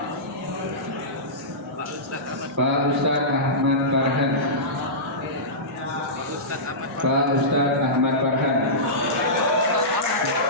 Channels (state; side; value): normal; both; correlation -0.17